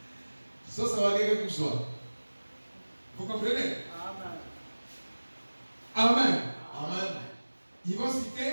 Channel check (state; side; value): inverted; both; correlation -1.00